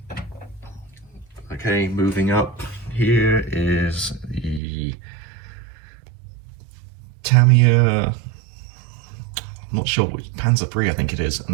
Okay, moving up, here is the Tamiya, I'm not sure which, Panzer III I think it is,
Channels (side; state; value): left; drops out; at 4.6 s